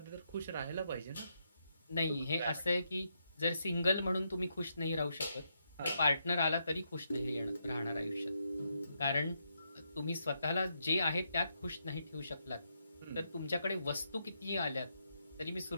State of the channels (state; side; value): inverted; both; correlation -0.80